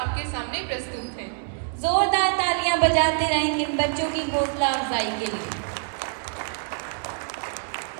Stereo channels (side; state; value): left; silent; digital silence